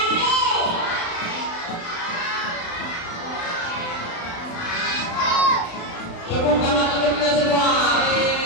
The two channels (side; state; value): right; late; 35 ms